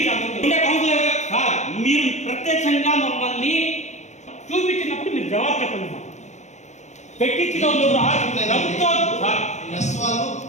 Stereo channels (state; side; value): late; right; 0.34 ms